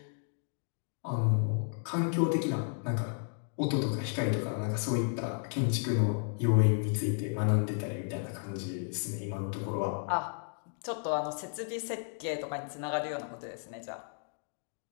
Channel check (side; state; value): right; silent; 56 dB below the other